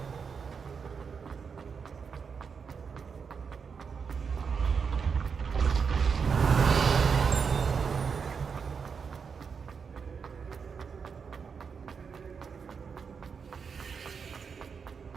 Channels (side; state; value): left; quieter; 6.0 dB